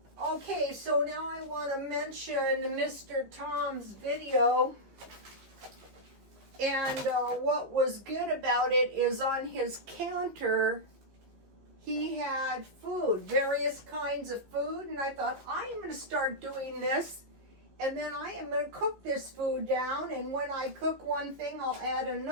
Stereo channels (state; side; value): late; left; 14 ms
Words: Okay, so now I want to mention Mr. Tom's video. And what was good about it is on his counter, he had food, various kinds of food. And I thought, I am going to start doing this. And then I am going to cook this food down. And when I cook one thing, I'll add